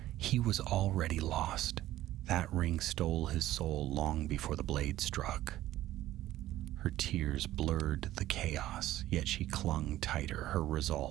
He was already lost. That ring stole his soul long before the blade struck." Her tears blurred the chaos, yet she clung tighter, her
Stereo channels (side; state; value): left; quieter; 14.5 dB